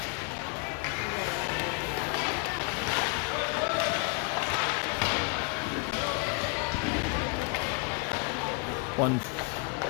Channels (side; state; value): right; quieter; 32.1 dB